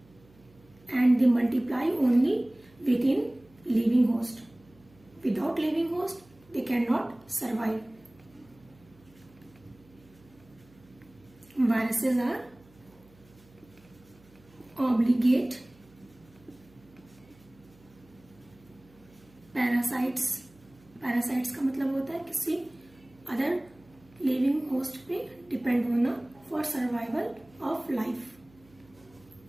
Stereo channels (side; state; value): right; noise; hum, 27 dB below the sound